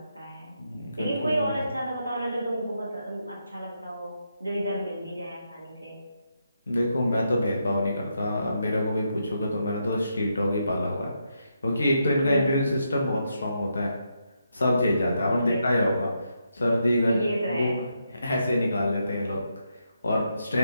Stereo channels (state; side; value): inverted; both; correlation -0.81